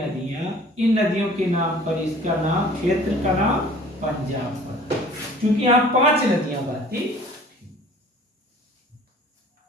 इन नदियों के नाम पर इसका नाम, क्षेत्र का नाम पंजाब पड़ा, क्योंकि यहां 5 नदियां बहती।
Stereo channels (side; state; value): both; normal; correlation 0.49